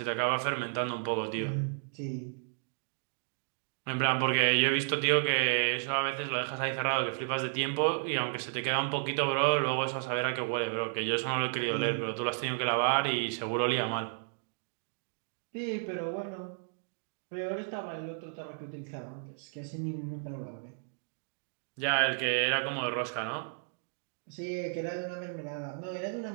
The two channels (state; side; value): silent; left; digital silence